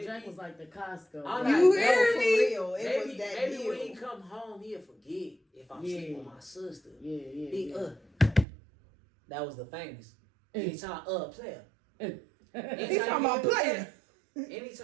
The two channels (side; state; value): left; drops out; at 8.5 s